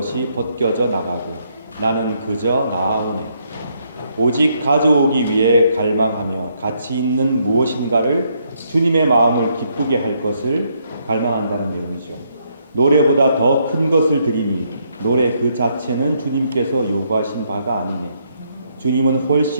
벗겨져 나가고 나는 그저 나아오네. 오직 가져오기 위해 갈망하며 가치 있는 무엇인가를 주님의 마음을 기쁘게 할 것을 갈망한다는 내용이죠. 노래보다 더 큰 것을 드리니 노래 그 자체는 주님께서 요구하신 바가 아니네. 주님은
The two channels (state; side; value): inverted; both; correlation -0.74